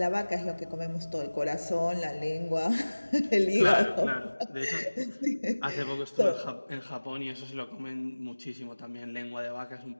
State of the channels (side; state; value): both; inverted; correlation -1.00